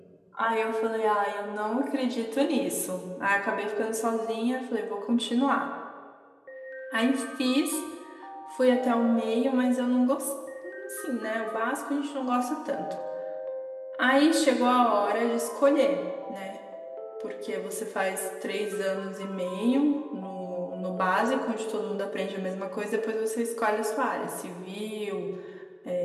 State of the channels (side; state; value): both; identical; correlation 1.00